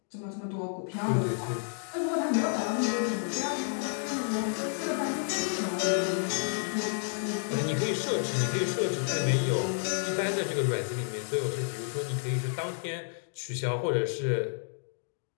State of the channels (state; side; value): silent; right; 57 dB below the other